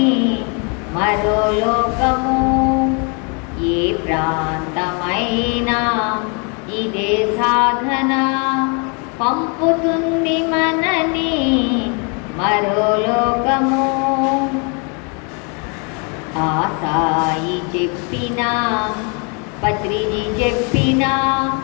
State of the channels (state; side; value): quieter; right; 35.4 dB